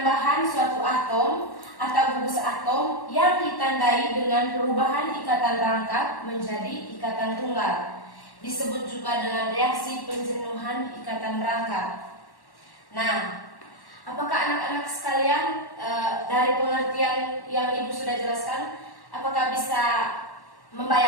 suatu atom atau gugus atom yang ditandai dengan perubahan ikatan rangkap menjadi ikatan tunggal. Disebut juga dengan reaksi penjenuhan ikatan rangkap. Nah, apakah anak-anak sekalian dari pengertian yang Ibu sudah jelaskan, apakah bisa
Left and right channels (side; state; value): right; late; 1.1 ms